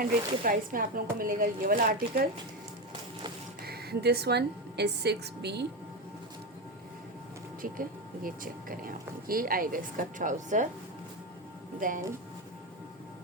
के प्राइस में आप लोगों को मिलेगा ये वाला article. This one is 6B। ठीक है, ये चेक करें आप, ये आएगा इसका ट्राउज़र, देन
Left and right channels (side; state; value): both; normal; correlation 0.15